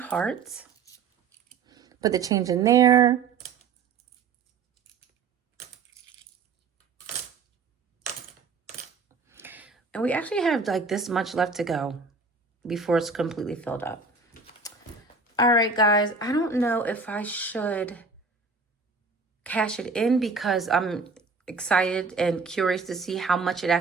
Put the change in there. And we actually have like this much left to go before it's completely filled up. All right, guys, I don't know if I should cash it in because I'm excited and curious to see how much it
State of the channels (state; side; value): quieter; left; 4.6 dB